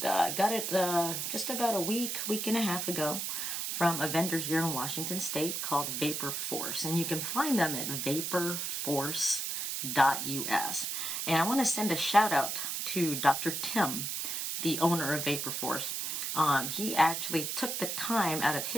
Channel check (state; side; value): noise; right; hiss, 2 dB below the sound